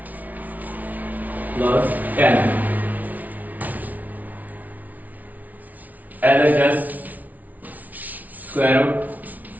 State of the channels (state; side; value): late; left; 0.075 ms